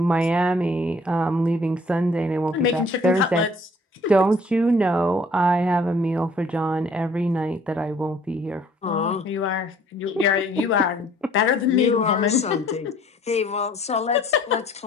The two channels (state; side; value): normal; both; correlation 0.57